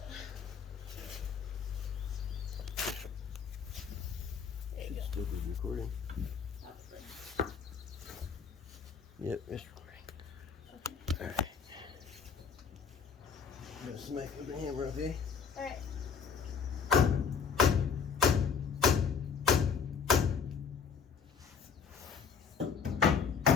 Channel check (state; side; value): quieter; right; 6.4 dB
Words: Should still be recording. Probably. Yep, it's recording. Okay. Alright. I'm gonna smack with the hammer, okay? All right.